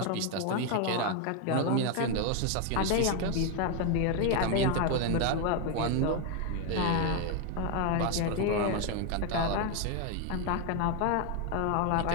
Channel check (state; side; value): different; both; correlation 0.01